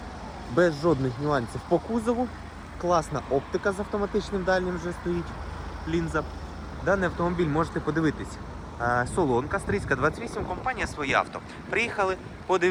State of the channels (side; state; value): both; identical; correlation 1.00